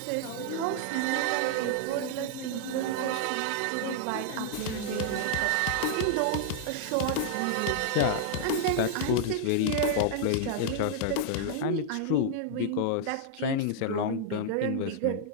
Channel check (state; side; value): different; both; correlation -0.01